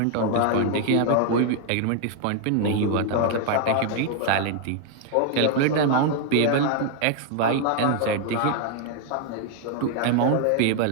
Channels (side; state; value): both; different; correlation 0.00